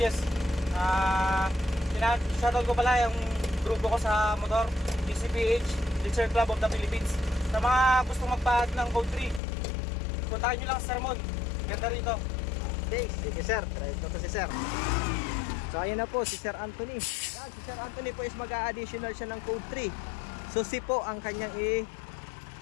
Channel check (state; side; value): drops out; right; at 9.4 s